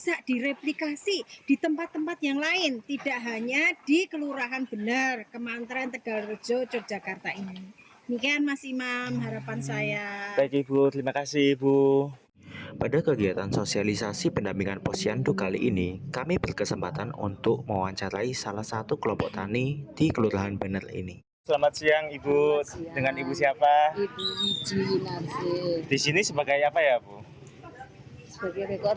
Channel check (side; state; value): both; identical; correlation 1.00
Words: direplikasi di tempat-tempat yang lain, tidak hanya di Kelurahan Bener, Kemantren Tegalrejo, Yogyakarta ini. Demikian Mas Imam harapan saya. Baik Ibu, terima kasih Ibu. Pada kegiatan sosialisasi pendampingan posyandu kali ini, kami berkesempatan untuk mewawancarai salah satu kelompok tani di Kelurahan Bener ini. Selamat siang Ibu. Selamat siang. Dengan Ibu siapa? Ibu Wiji Narsih Di sini sebagai apa ya Bu? sebagai